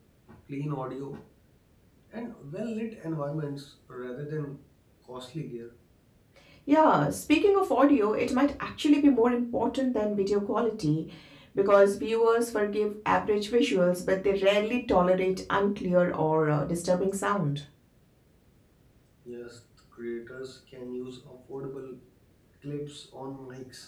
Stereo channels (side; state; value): both; identical; correlation 1.00